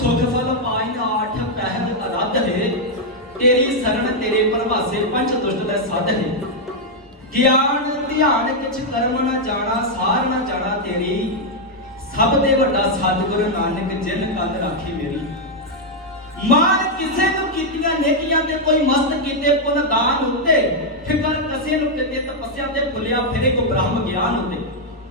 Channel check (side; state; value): both; normal; correlation -0.01